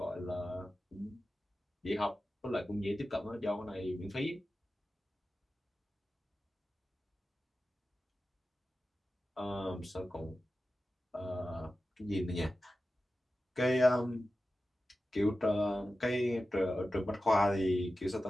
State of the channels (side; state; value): both; normal; correlation 0.94